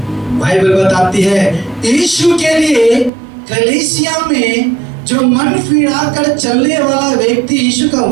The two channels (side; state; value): left; drops out; at 3.1 s